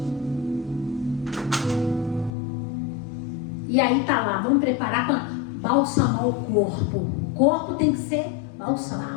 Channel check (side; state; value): right; drops out; at 2.3 s